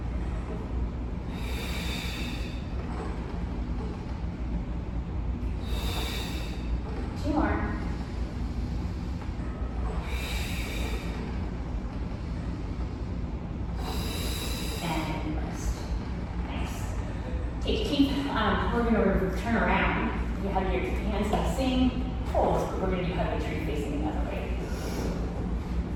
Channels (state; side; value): identical; both; correlation 1.00